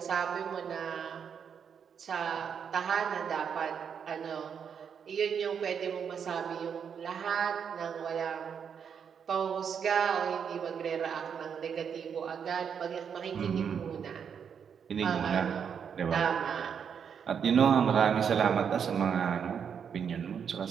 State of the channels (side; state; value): left; quieter; 7.3 dB